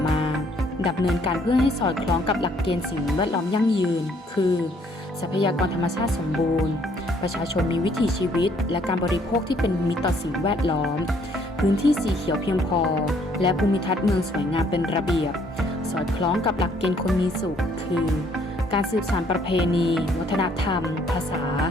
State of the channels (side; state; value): both; normal; correlation 0.64